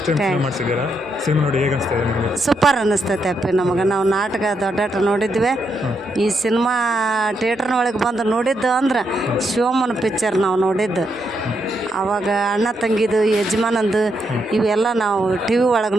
ಟೈಮ್ ಸಿನಿಮಾ ಮಾಡಿಸಿದ್ದೀರಾ? ಸಿನಿಮಾ ನೋಡಿ ಹೇಗೆ ಅನಿಸ್ತಾ ಇದೆ ನಿಮಗೆ? ಸೂಪರ್ ಅನ್ನಿಸ್ತೈತೆ ಅಪ್ಪಿ ನಮಗೆ. ನಾವು ನಾಟಕ ದೊಡ್ಡ ನೋಡಿದ್ವಿ. ಈ ಸಿನಿಮಾ ಥಿಯೇಟ್ರ್ನೊಳಗೆ ಬಂದು ನೋಡಿದ್ದು ಅಂದ್ರೆ ಶಿವಮ್ಮನ ಪಿಕ್ಚರ್ ನಾವು ನೋಡಿದ್ದು. ಆವಾಗ ಅಣ್ಣ ತಂಗಿದು ಯಜಮಾನಂದು ಇವೆಲ್ಲ ನಾವು ಟಿ ವಿ ಒಳಗೆ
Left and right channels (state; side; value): normal; both; correlation 0.80